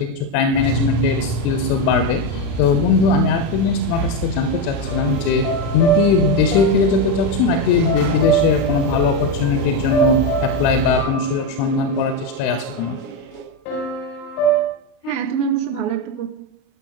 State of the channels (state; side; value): late; right; 36 ms